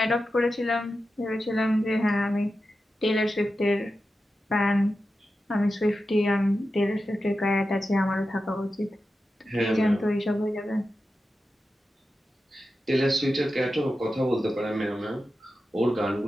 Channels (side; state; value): both; normal; correlation 0.91